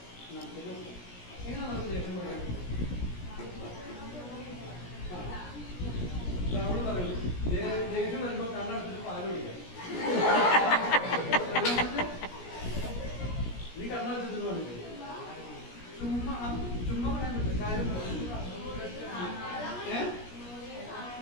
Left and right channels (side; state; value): right; late; 17 ms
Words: എങ്ങനെ നമുക്ക് ദേഷ്യം കുറയ്ക്കാൻ പറ്റും? നമ്മൾ പറയുന്നു ദേഷ്യം വരുമ്പോൾ കണ്ണടച്ചിട്ട് പാല് കുടിക്കാം. നീ കണ്ണടച്ചിട്ട് പാടില്ല. ചുമ്മാ പറയാൻ പറ്റില്ല. കാര്യം